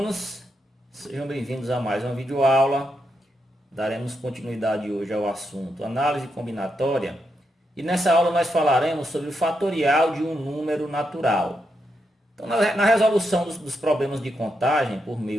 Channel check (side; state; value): both; normal; correlation 0.83